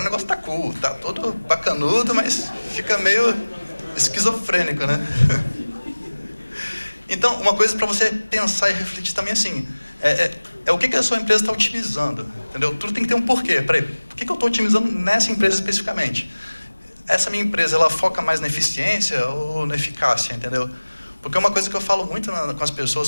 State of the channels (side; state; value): both; inverted; correlation -1.00